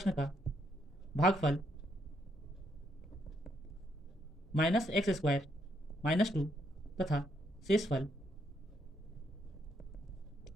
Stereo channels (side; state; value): both; normal; correlation 0.75